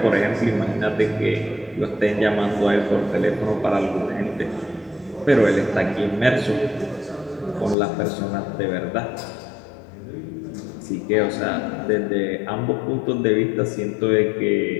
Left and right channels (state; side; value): drops out; right; at 7.8 s